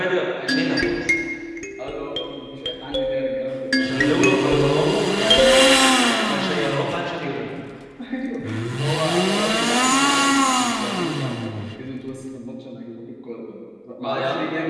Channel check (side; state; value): both; identical; correlation 1.00